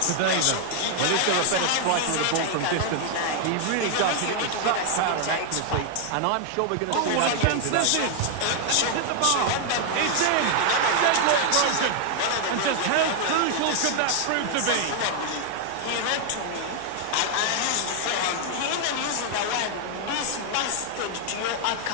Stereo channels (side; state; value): both; different; correlation 0.00